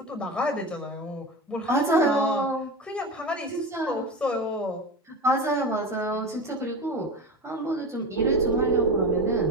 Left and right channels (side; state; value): both; normal; correlation 0.26